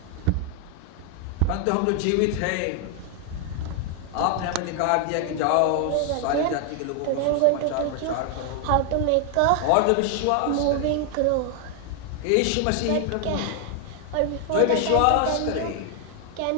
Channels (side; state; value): both; different; correlation 0.00